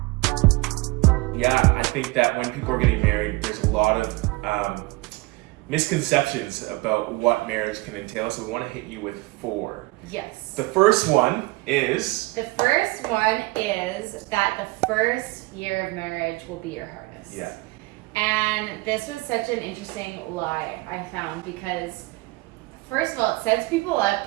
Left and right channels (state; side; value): quieter; left; 22.8 dB